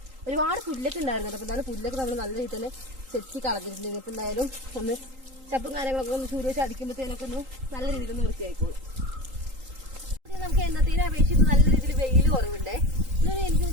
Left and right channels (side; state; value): left; late; 3.8 ms